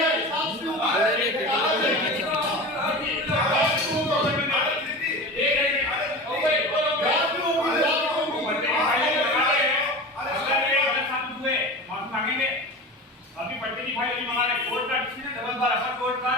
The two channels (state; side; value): normal; both; correlation 0.31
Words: अभी पट्टे की फाइल नहीं मंगा रहे कोर्ट का डिसीजन डबल बार अपर कोर्ट का